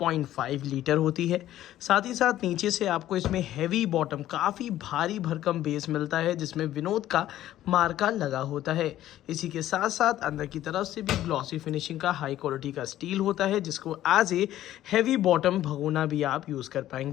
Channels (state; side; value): quieter; right; 13.3 dB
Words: लीटर होती है। साथ ही साथ नीचे से आपको इसमें हैवी बॉटम, काफ़ी भारी भरकम बेस मिलता है जिसमें विनोद का मार्का लगा होता है। इसी के साथ साथ अंदर की तरफ से भी ग्लॉसी फिनिशिंग का हाई क्वालिटी का स्टील होता है जिसको एज ए हैवी बॉटम भगोना भी आप यूज़ कर